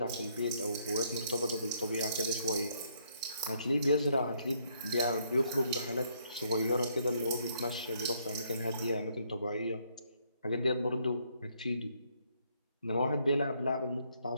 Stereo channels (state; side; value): inverted; both; correlation -0.70